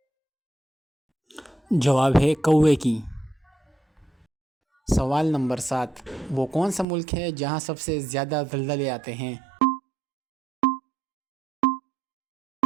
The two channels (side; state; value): left; drops out; at 6.9 s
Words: جواب ہے کوے کی۔ سوال نمبر 7، وہ کون سا ملک ہے جہاں سب سے زیادہ زلزلے آتے ہیں؟